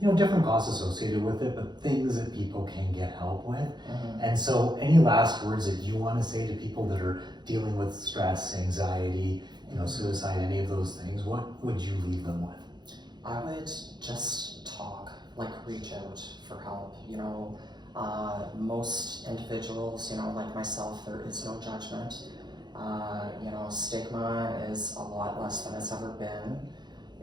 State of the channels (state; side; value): late; left; 0.21 ms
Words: different costs associated with it, but things that people can get help with. And so any last words that you want to say to people that are dealing with stress, anxiety, suicide, any of those things, what would you leave them with? I would just talk, reach out for help. Most individuals, like myself, there is no judgment. Stigma is a lot less than it's ever been.